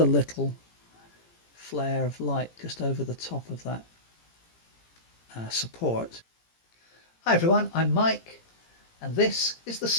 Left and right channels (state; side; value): late; right; 17 ms